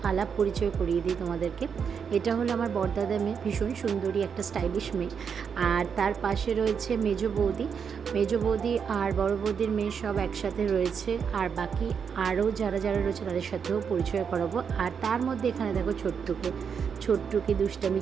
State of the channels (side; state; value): left; quieter; 6.7 dB